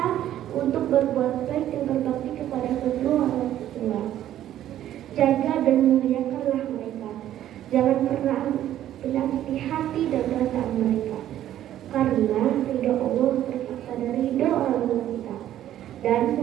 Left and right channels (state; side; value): quieter; left; 12.1 dB